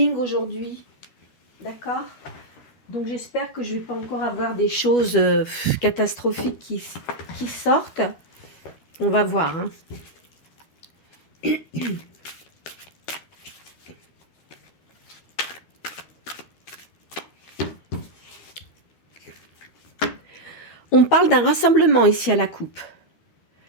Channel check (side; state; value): right; late; 13 ms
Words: aujourd'hui. D'accord? Donc j'espère que je ne vais pas encore avoir des choses catastrophiques qui sortent. On va voir. Hein. On parle d'un rassemblement ici à la coupe.